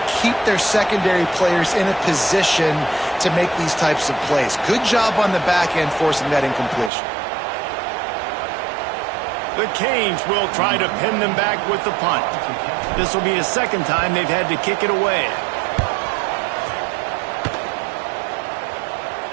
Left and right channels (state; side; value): drops out; left; at 6.9 s